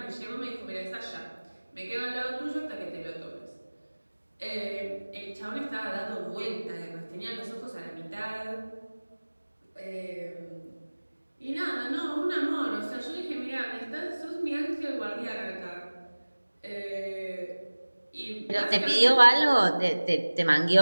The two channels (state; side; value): inverted; both; correlation -1.00